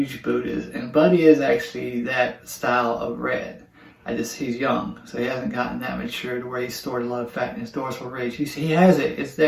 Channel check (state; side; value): identical; both; correlation 1.00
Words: Buddhas. And Buddy is actually that style of red. He's young, so he hasn't gotten that mature to where he's stored a lot of fat in his dorsal ridge. He has it, it's